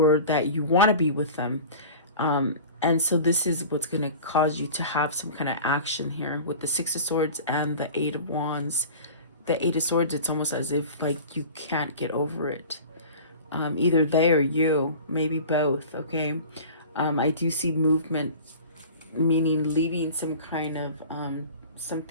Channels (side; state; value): both; inverted; correlation -0.39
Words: that you want to be with them. And so this is what's going to cause you to have some kind of action here with the Six of Swords and the Eight of Wands. The Eight of Swords, it's almost as if like you can't get over it. Either they or you, maybe both, okay? I do see movement, meaning leaving some kind of